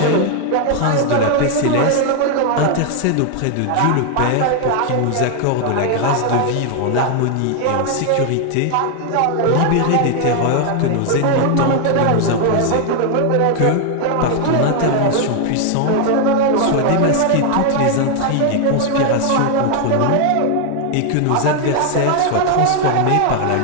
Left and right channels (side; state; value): both; different; correlation 0.00